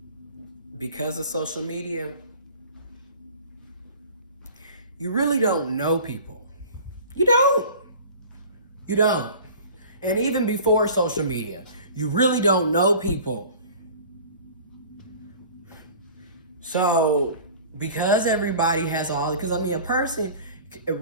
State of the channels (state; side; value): inverted; both; correlation -0.43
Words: because of social media, you really don't know people. You don't. You don't. And even before social media, you really don't know people. So, because everybody has because a person